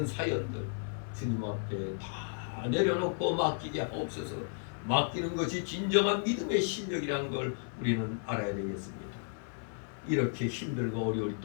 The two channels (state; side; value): silent; right; 55 dB below the other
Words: 사연들 주님 앞에 다 내려놓고 맡기게 하옵소서. 맡기는 것이 진정한 믿음의 실력이라는 걸 우리는 알아야 되겠습니다. 이렇게 힘들고 어려울